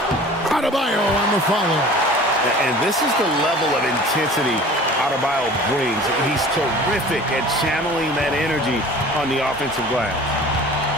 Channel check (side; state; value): both; normal; correlation 0.44